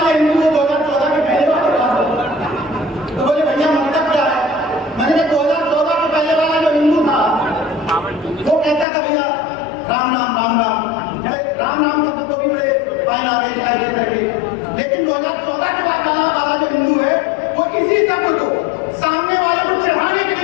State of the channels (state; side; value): drops out; right; at 8.8 s